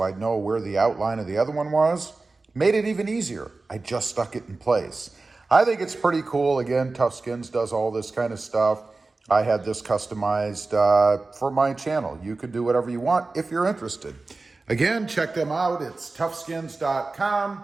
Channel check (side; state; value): left; quieter; 3.6 dB